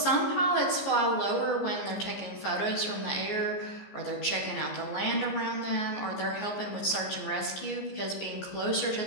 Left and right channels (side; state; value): right; late; 14 ms